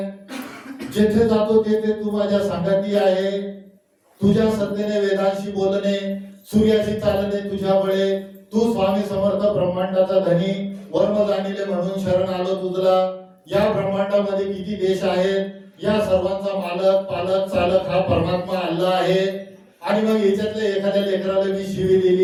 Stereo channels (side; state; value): both; identical; correlation 1.00